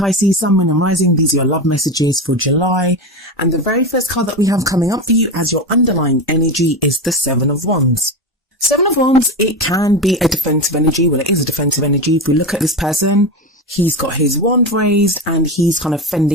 Sun, Moon and Rising. These are your love messages for July. And the very first card that we have coming up for you as your underlying energy is the Seven of Wands. Seven of Wands, it can be a defensive energy. Well, it is a defensive energy. If we look at this person, he's got his wand raised and he's kind of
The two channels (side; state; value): both; normal; correlation 0.20